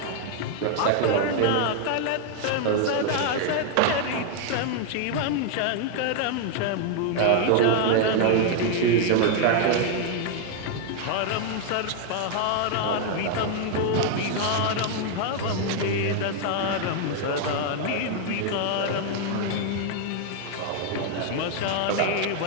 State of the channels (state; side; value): different; both; correlation 0.00